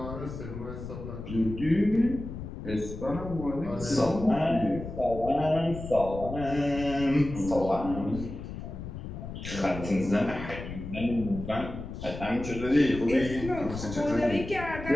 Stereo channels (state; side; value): noise; left; rumble, 9 dB below the sound